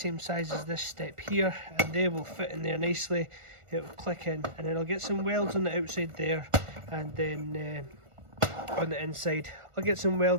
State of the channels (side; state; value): left; late; 1.4 ms